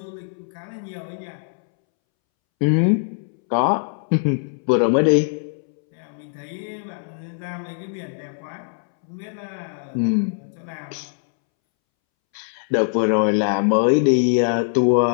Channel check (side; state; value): right; silent; 64 dB below the other